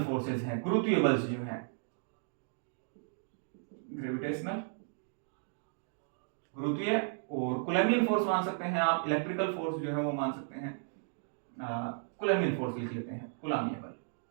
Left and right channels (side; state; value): left; silent; digital silence